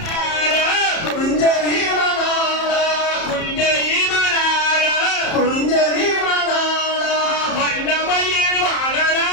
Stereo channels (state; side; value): late; right; 30 ms